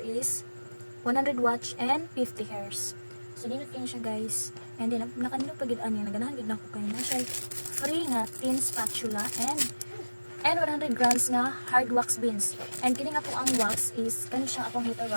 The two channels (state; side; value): inverted; both; correlation -1.00